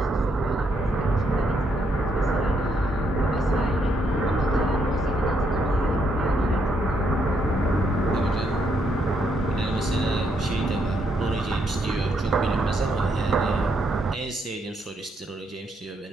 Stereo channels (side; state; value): both; normal; correlation 0.75